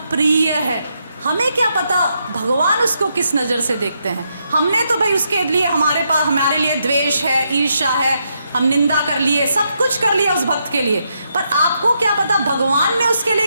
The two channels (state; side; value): inverted; both; correlation -0.80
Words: प्रिय है। हमें क्या पता भगवान उसको किस नज़र से देखते हैं? हमने तो भाई उसके लिए हमारे लिए द्वेष है, ईर्ष्या है, हम निंदा कर लिए, सब कुछ कर लिया उस भक्त के लिए, पर आपको क्या पता भगवान ने उसके